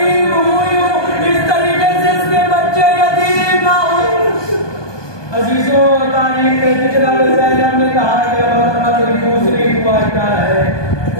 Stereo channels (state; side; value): late; right; 1.2 ms